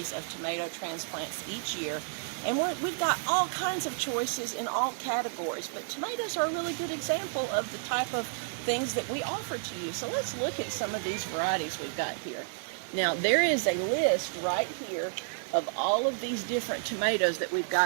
of tomato transplants each year, and we've got all kinds of choices in all categories, but tomatoes are a really good example of the type of things that we offer to you. So let's look at some of these varieties we've got here. Now, there is a list right here of all of these different tomatoes that we've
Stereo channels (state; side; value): silent; left; digital silence